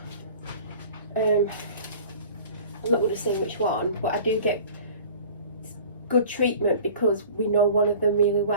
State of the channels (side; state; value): both; inverted; correlation -0.44